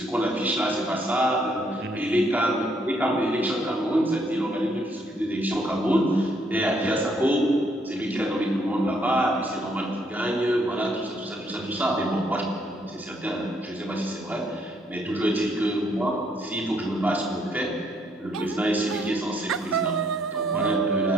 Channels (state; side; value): normal; both; correlation 0.70